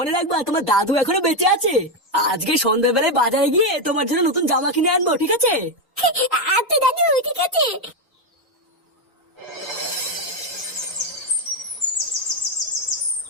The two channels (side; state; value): both; normal; correlation 0.06